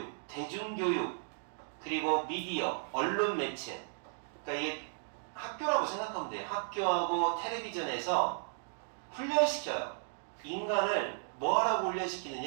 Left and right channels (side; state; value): left; silent; 54 dB below the other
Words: 대중교육, 그리고 미디어, 언론 매체. 그러니까 이게 학교라고 생각하면 돼요. 학교하고 텔레비전에서 훈련시켜요. 인간을 뭐 하라고